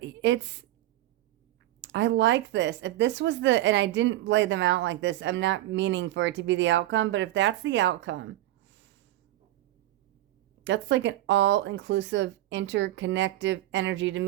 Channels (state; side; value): quieter; left; 15.5 dB